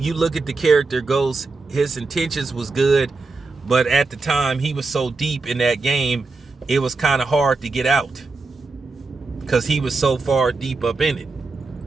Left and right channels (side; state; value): left; quieter; 3.8 dB